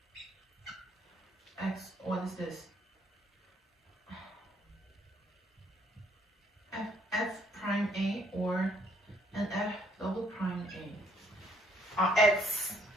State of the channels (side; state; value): both; normal; correlation 0.66